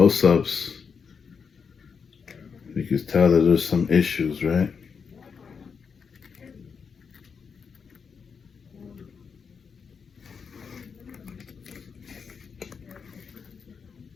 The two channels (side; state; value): right; quieter; 6.0 dB